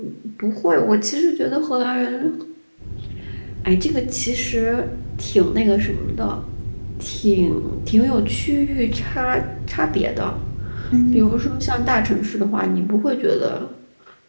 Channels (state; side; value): inverted; both; correlation -1.00